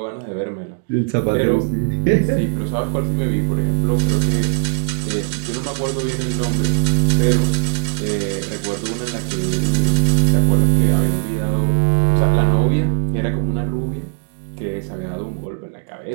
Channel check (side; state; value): left; silent; digital silence